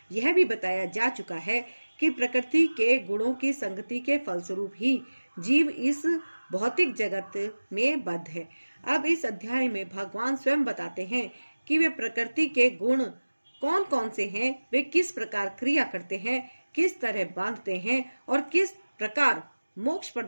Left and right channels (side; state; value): both; inverted; correlation -1.00